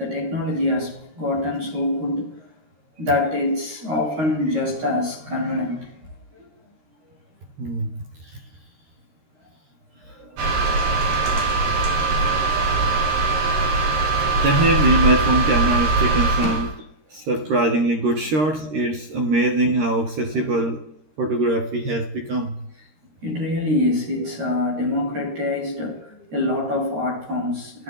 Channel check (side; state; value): left; late; 13 ms